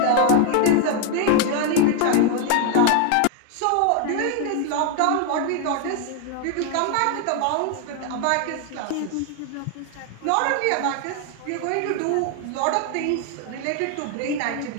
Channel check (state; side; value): different; both; correlation 0.00